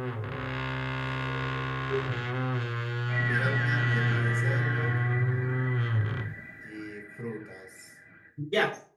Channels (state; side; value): identical; both; correlation 1.00